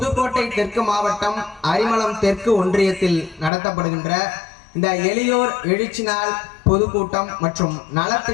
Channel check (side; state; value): right; drops out; at 3.5 s